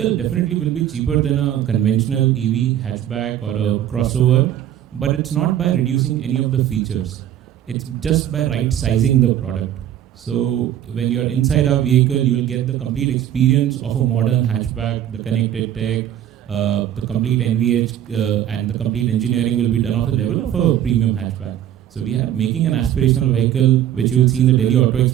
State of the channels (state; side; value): quieter; left; 11.1 dB